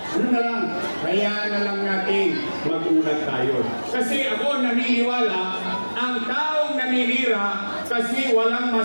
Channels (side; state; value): both; inverted; correlation -1.00